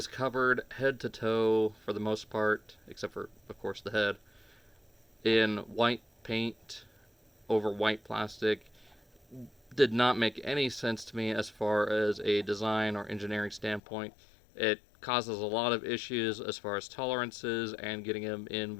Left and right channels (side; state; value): right; drops out; at 13.8 s